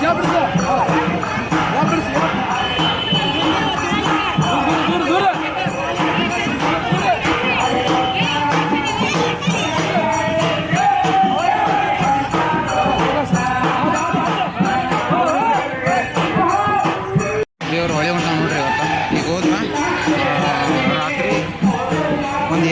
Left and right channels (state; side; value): identical; both; correlation 1.00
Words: ದೇವ್ರು ಹೊಳೆ ಹೊಂಟ ನೋಡ್ರಿ ಇವತ್ತು ಈಗ ಹೋದ್ರ ರಾತ್ರಿ ಒಂದು